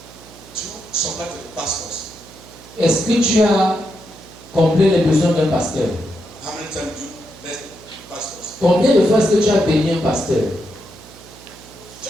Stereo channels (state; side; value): noise; right; hum, 21 dB below the sound